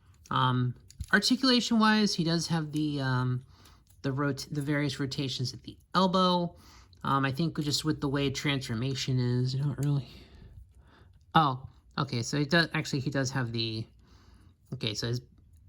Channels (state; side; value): identical; both; correlation 1.00